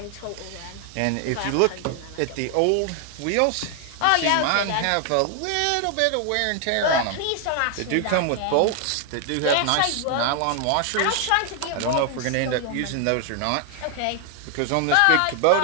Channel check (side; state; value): both; different; correlation 0.00